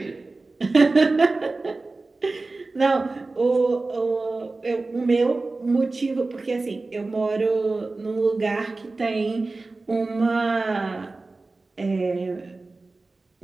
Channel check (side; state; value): left; quieter; 3.4 dB